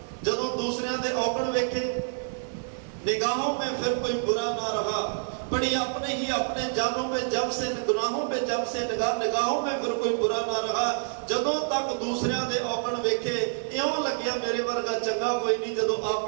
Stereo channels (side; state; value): left; silent; 60 dB below the other